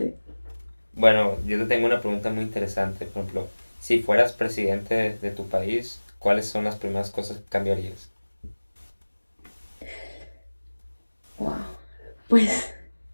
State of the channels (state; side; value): inverted; both; correlation -1.00